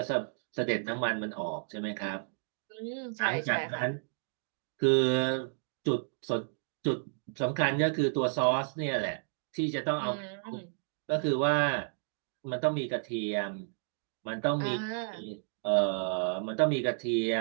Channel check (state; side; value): silent; left; digital silence